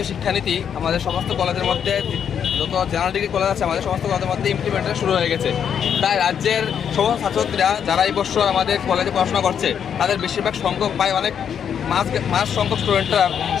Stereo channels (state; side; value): quieter; right; 8.1 dB